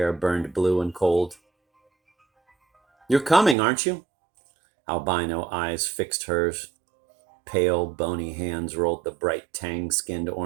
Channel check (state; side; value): drops out; left; at 3.6 s